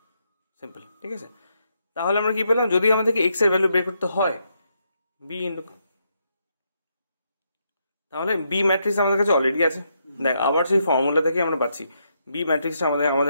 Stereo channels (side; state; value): both; inverted; correlation -0.78